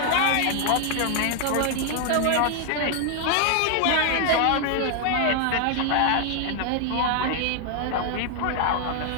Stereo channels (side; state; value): both; different; correlation 0.00